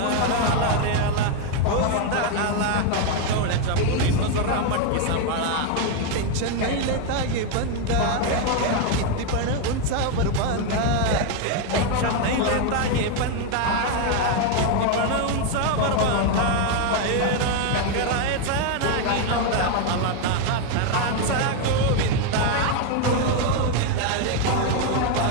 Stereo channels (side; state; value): both; different; correlation 0.01